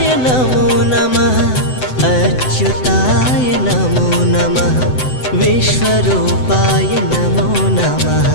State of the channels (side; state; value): right; late; 7.9 ms